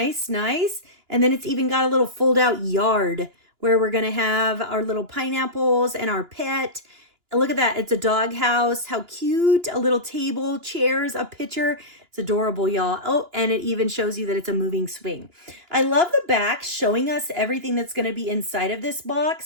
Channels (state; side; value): late; left; 2.9 ms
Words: nice. And then it's even got a little fold out yard where we're going to have our little pineapples and our pet. Look at that. It's a dog house. How cute. A little table, chairs, a pitcher. It's adorable, y'all. Oh, and it even shows you that it's a moving swing. I love the back showing us everything that's going to be inside of this